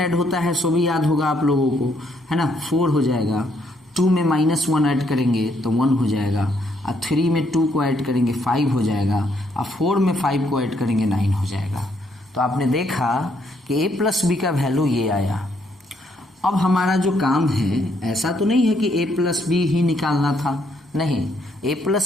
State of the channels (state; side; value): normal; both; correlation 0.72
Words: होता है सो भी याद होगा आप लोगों को, है ना। 4 हो जाएगा, 2 में -1 ऐड करेंगे तो 1 हो जाएगा, और 3 में 2 को ऐड करेंगे 5 हो जाएगा, और 4 में 5 को ऐड करेंगे 9 हो जाएगा। तो आपने देखा कि A + B का वैल्यू ये आया। अब हमारा जो काम है ऐसा तो नहीं है कि A + B ही निकालना था, नहीं, ए